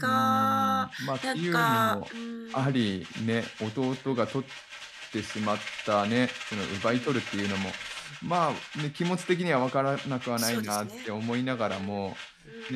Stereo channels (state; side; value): identical; both; correlation 1.00